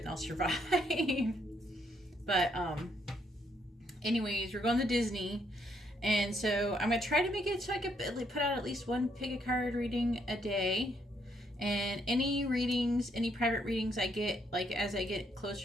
I'll survive. But anyways, we're going to Disney. And so I'm going to try to make it so I can put out at least one pick a card reading a day. And any readings, any private readings I get, like as I get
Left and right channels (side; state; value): both; normal; correlation 0.73